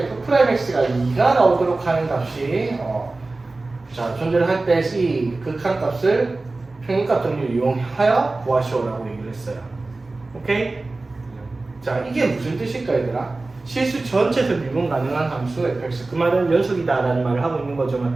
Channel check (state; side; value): quieter; left; 3.3 dB